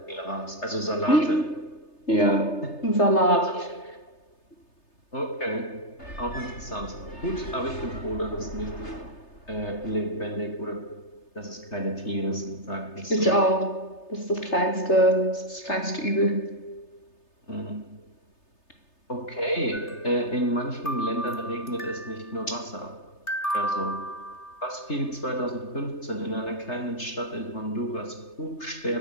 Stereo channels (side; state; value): right; late; 3.3 ms